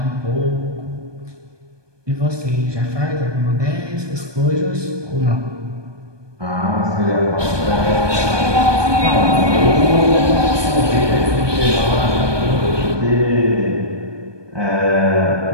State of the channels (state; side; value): late; left; 1.2 ms